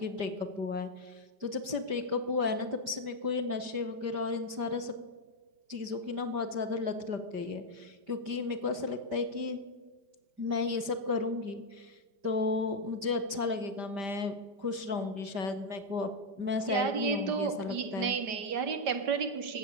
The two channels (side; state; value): left; late; 5.1 ms